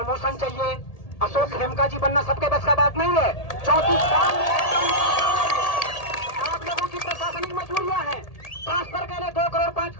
चाहिए, अशोक खेमका जी बनना सबके बस का बात नहीं है। 34 साल में आप लोगों की प्रशासनिक मजबूरियां हैं, ट्रांसफर के लिए 2 करोड़ 5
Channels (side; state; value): right; late; 1.8 ms